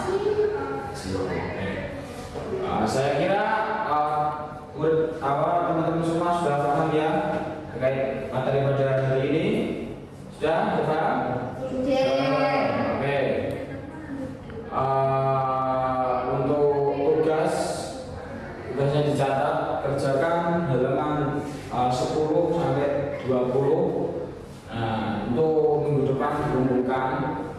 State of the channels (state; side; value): identical; both; correlation 1.00